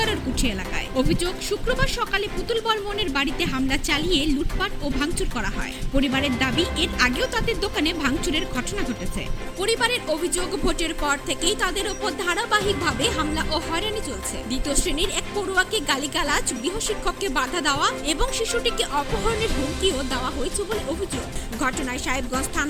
এলাকায়। অভিযোগ, শুক্রবার সকালে পুতুল বর্মনের বাড়িতে হামলা চালিয়ে লুটপাট ও ভাঙচুর করা হয়। পরিবারের দাবি, এর আগেও তাদের দোকানে ভাঙচুরের ঘটনা ঘটেছে। পরিবারের অভিযোগ, ভোটের পর থেকেই তাদের ওপর ধারাবাহিকভাবে হামলা ও হয়রানি চলছে। দ্বিতীয় শ্রেণীর এক পড়ুয়াকে গালিগালাজ, গৃহশিক্ষককে বাধা দেওয়া এবং শিশুটিকে অপহরণের হুমকিও দেওয়া হয়েছে বলে অভিযোগ। ঘটনায় সাহেবগঞ্জ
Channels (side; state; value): both; identical; correlation 1.00